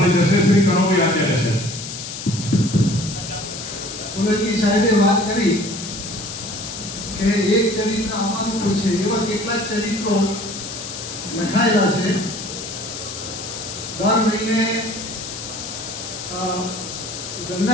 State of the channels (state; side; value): noise; left; hiss, 8 dB below the sound